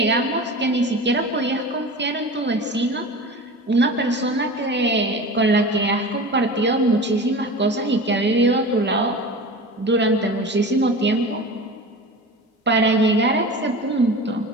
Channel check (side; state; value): both; normal; correlation 0.33